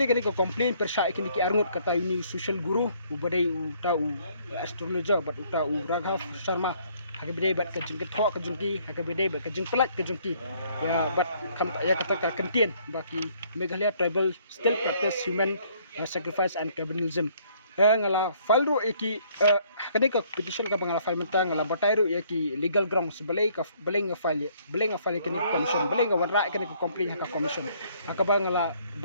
kan ko complain persya kini ki arngut kata ini social guru ubadai uta u astrologer bat uta u Raghav Sharma hakabede bat ka jing tho ka jing ki hakabede bat ka jing pelat ka jing ki ya bat kam ya kata ka kentien baki Meghalaya tribal still practice human sacrifice and cannibalism ngala falro eki kani ka petition ka bangala file menta ngala batairu eki legal grounds belai nga file kini commission belai nga warra kini complain ka commission akaba ngala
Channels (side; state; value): both; inverted; correlation -0.63